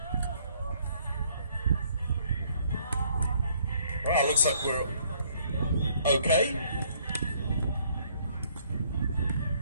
Well, looks like we're okay.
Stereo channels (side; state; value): both; inverted; correlation -0.64